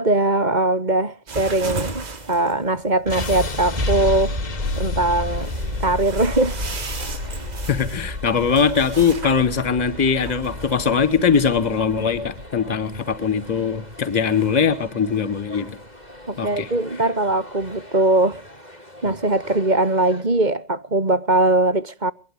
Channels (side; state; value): left; late; 2.0 ms